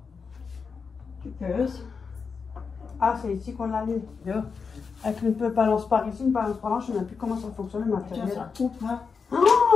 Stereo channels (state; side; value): quieter; right; 5.4 dB